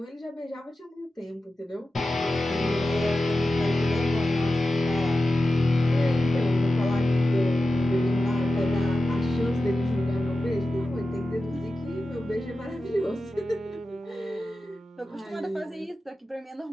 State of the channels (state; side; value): normal; both; correlation 0.93